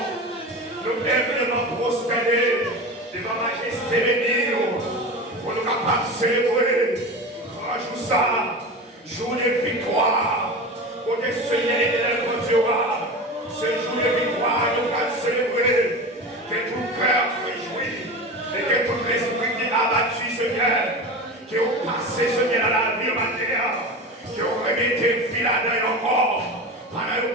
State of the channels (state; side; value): normal; both; correlation 0.28